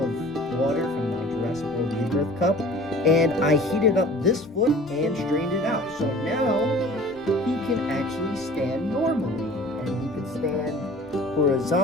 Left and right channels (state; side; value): normal; both; correlation 0.45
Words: water from my Jurassic World Rebirth cup, and I heated up this foot and strained it out. So now he can actually stand normally, and he can stand